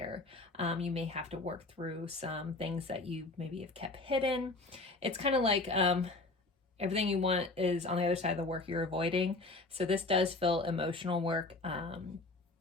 You may have to work through some things that you maybe have kept hidden. It's kind of like everything you want is on the other side of the work you're avoiding. So this does feel emotional work,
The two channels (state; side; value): quieter; right; 3.2 dB